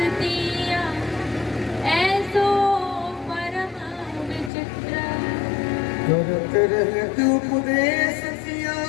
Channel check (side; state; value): right; drops out; at 4.5 s